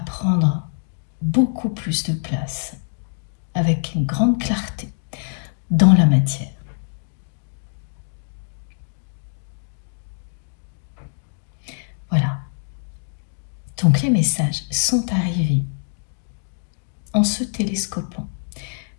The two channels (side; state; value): right; silent; digital silence